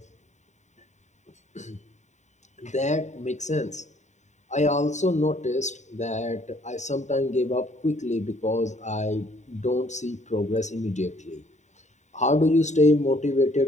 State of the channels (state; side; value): late; right; 0.34 ms